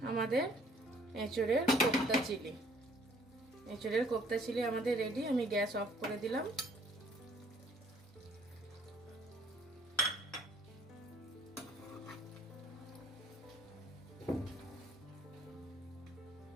আমাদের এঁচোড়ের কোপ্তা চিলি। এঁচোড়ের কোপ্তা চিলি আমাদের রেডি। আমি গ্যাস অফ করে দিলাম।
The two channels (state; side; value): normal; both; correlation 0.59